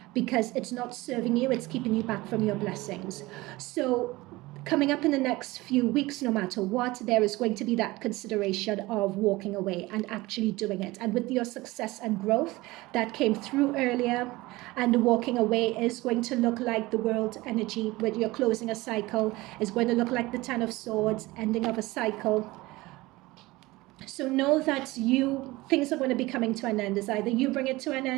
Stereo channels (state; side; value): quieter; left; 20.3 dB